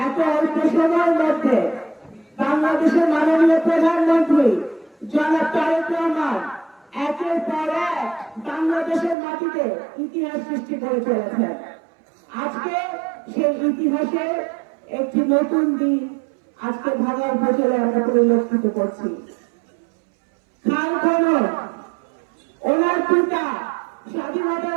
এত অল্প সময়ের মধ্যে বাংলাদেশের মাননীয় প্রধানমন্ত্রী জনাব তারেক রহমান একের পর এক বাংলাদেশের মাটিতে ইতিহাস সৃষ্টি করে চলেছেন। আজকে সেই ইতিহাসের একটি নতুন দিন আজকে ভাঙা উপজেলে আমরা পরিলক্ষিত করছি। খাল খনন, ওনার পিতা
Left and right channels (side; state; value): left; drops out; at 9.2 s